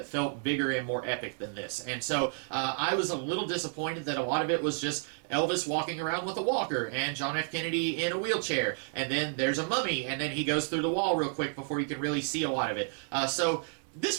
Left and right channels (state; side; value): silent; left; 56 dB below the other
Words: felt bigger and more epic than this, and so I was a little disappointed that a lot of it was just Elvis walking around with a walker and John F. Kennedy in a wheelchair, and then there's a mummy, and then he goes through the wall real quick before you can really see a lot of it. So